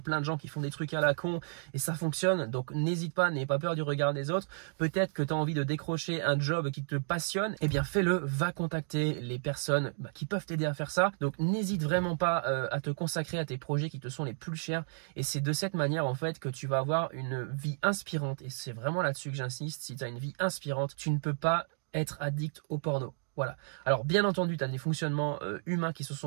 de gens qui font des trucs à la con et ça fonctionne, donc n'hésite pas, n'aie pas peur du regard des autres. Peut-être que tu as envie de décrocher un job qui te passionne, fais-le, va contacter les personnes qui peuvent t'aider à faire ça. Donc n'hésite vraiment pas à te consacrer à tes projets qui te sont les plus chers et c'est de cette manière en fait que tu vas avoir une vie inspirante et c'est vraiment là-dessus que j'insiste. Si tu as une vie inspirante, tu ne peux pas être addict au porno. Voilà. Alors bien entendu, tu as des fonctionnements humains qui se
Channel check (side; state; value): left; silent; digital silence